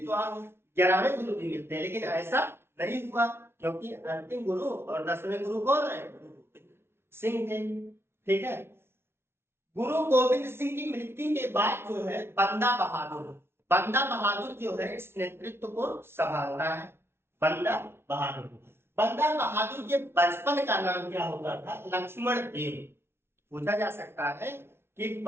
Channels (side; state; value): left; late; 0.12 ms